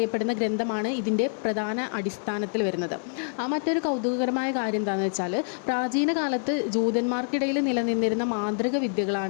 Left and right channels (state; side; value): silent; right; digital silence